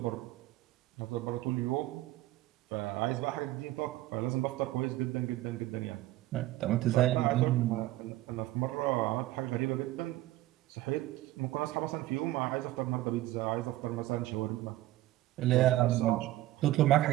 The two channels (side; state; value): left; quieter; 16.0 dB